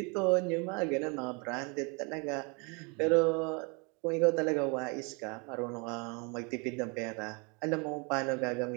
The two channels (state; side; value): quieter; left; 31.9 dB